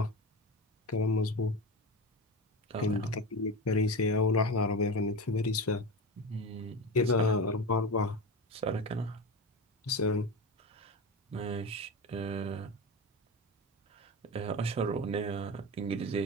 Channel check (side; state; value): both; normal; correlation 0.24